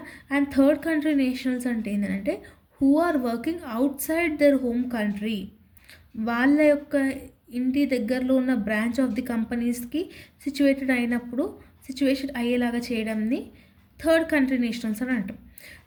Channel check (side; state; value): both; identical; correlation 1.00